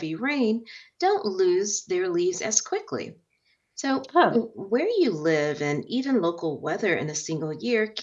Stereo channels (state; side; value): identical; both; correlation 1.00